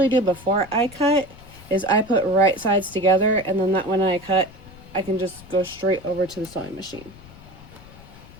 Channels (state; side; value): noise; left; rumble, 20 dB below the sound